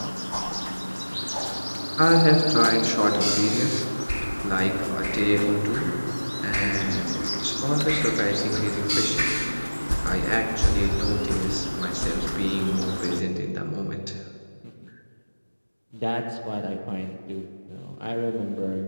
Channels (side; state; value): both; inverted; correlation -1.00